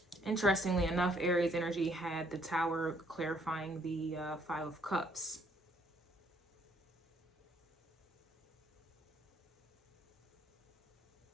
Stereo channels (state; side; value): normal; both; correlation 0.66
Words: Interestingly enough, Aries energy had the Tower clarifying the 5 of Cups.